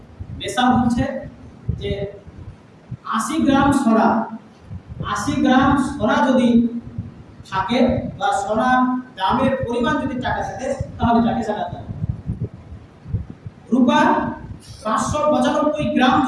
নেশাব হচ্ছে যে 80 গ্রাম সোনা, 80 গ্রাম সোনা যদি থাকে বা সোনার দামের পরিমাণ যদি টাকা থাকে তাহলে তাকে জাকাত দেয়। রূপা 595 গ্রাম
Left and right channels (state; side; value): identical; both; correlation 1.00